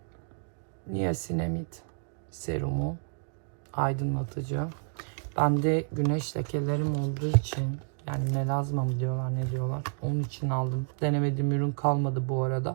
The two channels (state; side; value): silent; left; digital silence